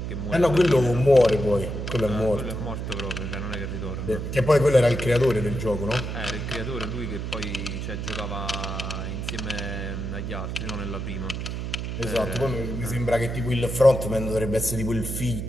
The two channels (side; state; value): right; noise; hum, 4 dB below the sound